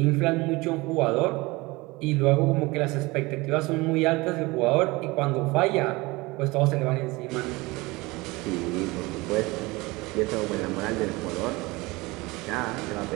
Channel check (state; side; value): quieter; left; 22.7 dB